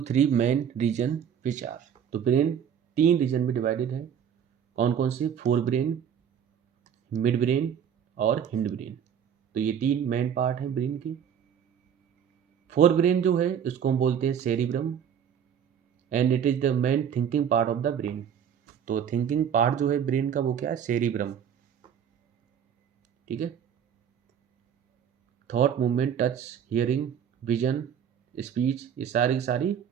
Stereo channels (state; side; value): quieter; left; 8.4 dB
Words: 3 main region which are. तो ब्रेन 3 रीजन में डिवाइडेड है। कौन कौन से, फोर ब्रेन, मिड ब्रेन और हिंड ब्रेन। तो ये 3 मेन पार्ट हैं ब्रेन की। फोर ब्रेन जो है इसको हम बोलते हैं cerebrum and it is the main thinking part of the brain. तो थिंकिंग पार्ट जो है ब्रेन का वो क्या है, सेरिब्रम। ठीक है। Thought, movement, touch, hearing, vision, speech, ये सारी की सारी